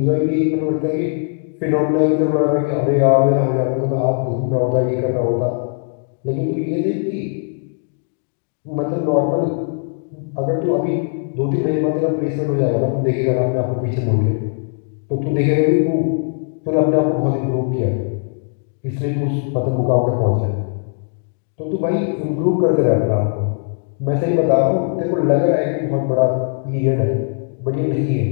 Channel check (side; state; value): right; silent; 66 dB below the other